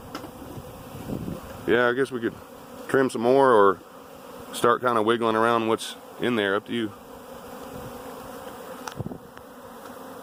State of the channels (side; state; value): both; identical; correlation 1.00